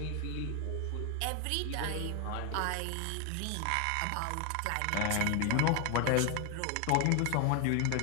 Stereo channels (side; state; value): both; different; correlation 0.01